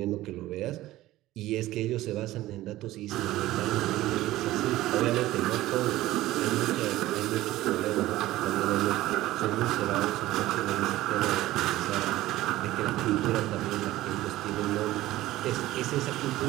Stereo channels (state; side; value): quieter; left; 16.2 dB